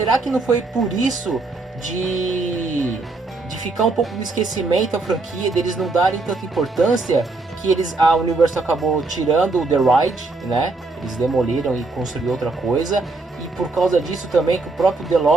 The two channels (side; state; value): left; quieter; 3.5 dB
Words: que não foi por isso de ficar um pouco no esquecimento a franquia, deles não darem tanta importância, que a Universal acabou tirando o The Ride, né? Eles demoliram e construíram outra coisa. E por causa disso também que o próprio